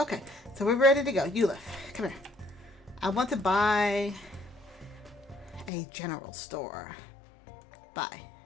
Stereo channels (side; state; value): right; drops out; at 5.7 s